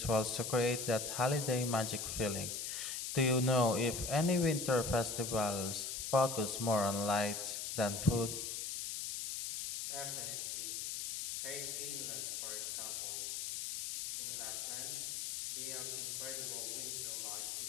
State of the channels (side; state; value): left; noise; hiss, 4 dB below the sound